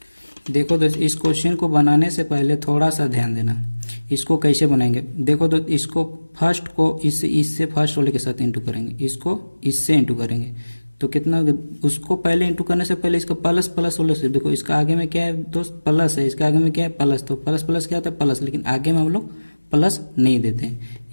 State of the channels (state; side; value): inverted; both; correlation -1.00